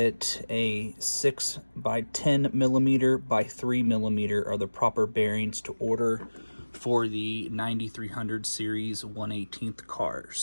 a 6 by 10 millimeter by 3 millimeter are the proper bearings to order for the 9300 series 1/18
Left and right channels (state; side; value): inverted; both; correlation -1.00